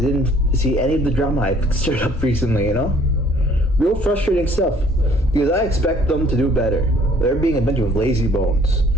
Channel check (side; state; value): both; normal; correlation 0.58